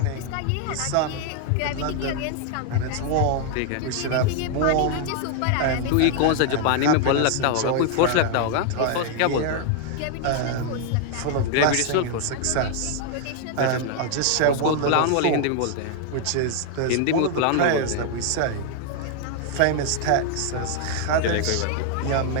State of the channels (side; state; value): both; different; correlation 0.00